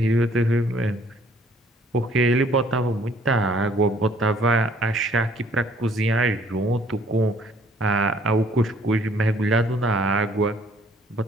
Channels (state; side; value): normal; both; correlation 0.60